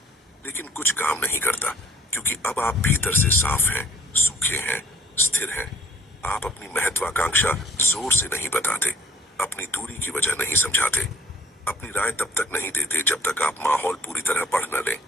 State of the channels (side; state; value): both; normal; correlation 0.55